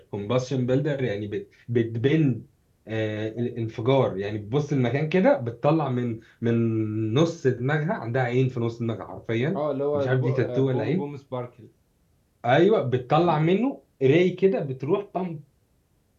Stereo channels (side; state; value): both; identical; correlation 1.00